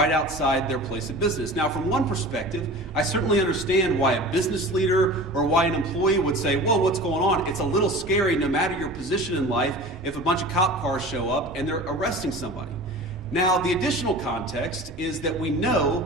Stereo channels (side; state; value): both; normal; correlation 0.37